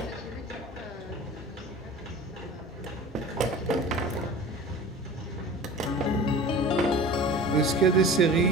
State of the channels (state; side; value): normal; both; correlation 0.39